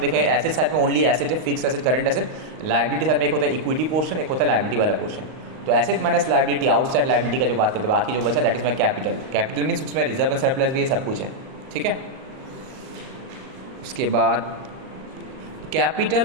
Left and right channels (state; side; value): late; left; 39 ms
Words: देखें एसेट साइड में ओनली एसेट है, fix asset, current asset, liability side में एक होता है इक्विटी पोर्शन, एक होता है लाइबिलिटी वाला पोर्शन, तो asset minus liability, outside liability का जो बात करते हैं, बाकी जो बचा that is my capital, capital means उसमें रिजर्व एंड सरप्लस भी है, सब कुछ है। ठीक है, उसके बाद